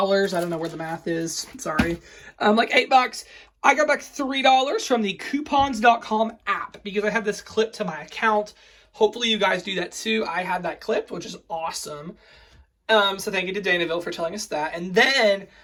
I don't know where the math is. Sorry. Like $8. I got back $3 from the coupons.com app because I have this clip to my account. Hopefully you guys do that too. I had that clipped, which is awesome. So thank you to Danaville for telling us that. And then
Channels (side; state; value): both; identical; correlation 1.00